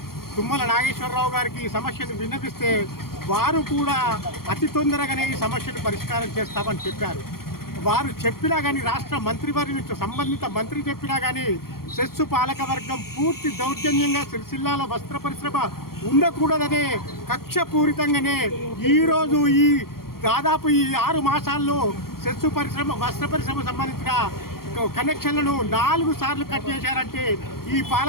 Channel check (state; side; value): late; right; 0.93 ms